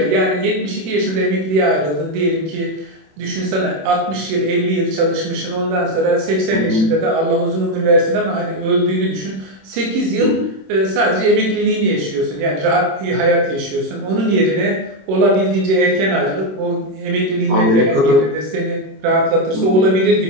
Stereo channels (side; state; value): left; late; 27 ms